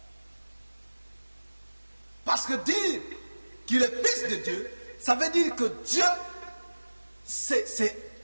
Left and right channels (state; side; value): inverted; both; correlation -1.00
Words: Parce que dire qu'il est Fils de Dieu, ça veut dire que Dieu